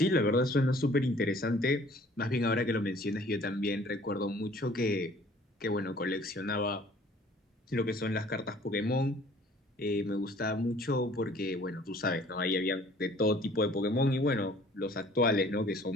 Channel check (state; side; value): normal; both; correlation 0.54